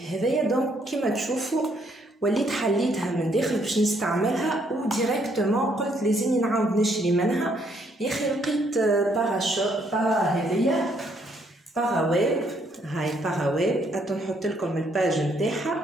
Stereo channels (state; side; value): normal; both; correlation 0.70